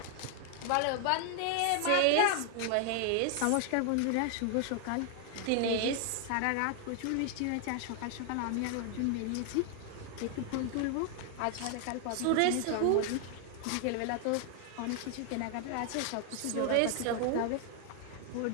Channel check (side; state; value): both; different; correlation 0.00